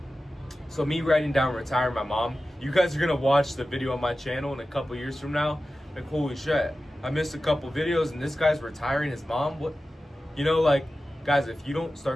So me writing down retiring my mom, you guys are gonna watch the video on my channel in a couple years from now. Like, holy shit, I missed a couple videos and this guy's retiring his mom. What? You know, like, guys, if you don't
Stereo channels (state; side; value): normal; both; correlation 0.94